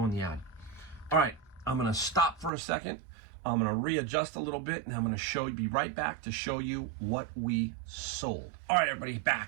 in the ad. All right, I'm gonna stop for a second. I'm gonna readjust a little bit, and I'm gonna be right back to show you what we sold. All right, everybody,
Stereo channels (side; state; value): left; drops out; at 2.5 s